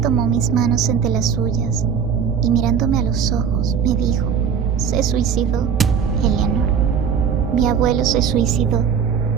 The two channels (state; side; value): quieter; left; 7.2 dB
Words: mis manos entre las suyas y mirándome a los ojos me dijo: «Se suicidó, Eleanor. Mi abuelo se suicidó».